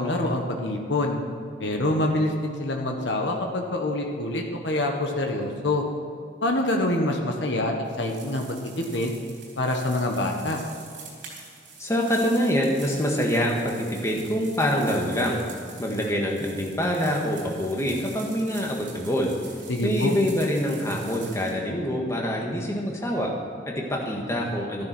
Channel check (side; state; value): both; normal; correlation 0.51